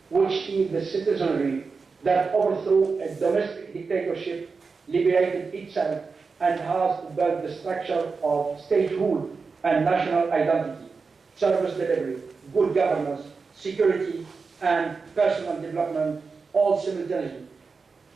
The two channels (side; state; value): left; quieter; 4.7 dB